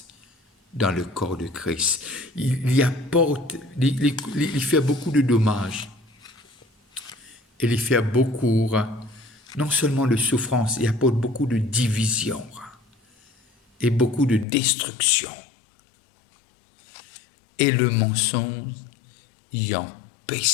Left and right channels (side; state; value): right; drops out; at 14.5 s